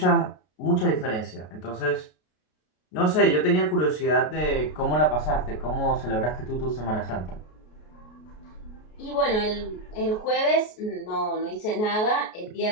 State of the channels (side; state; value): right; late; 33 ms